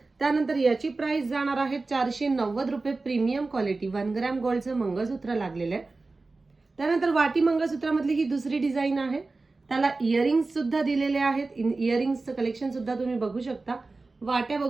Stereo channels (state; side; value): quieter; left; 3.6 dB